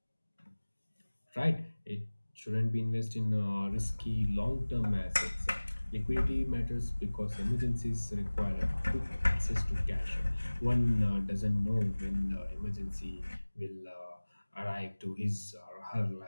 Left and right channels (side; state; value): both; inverted; correlation -1.00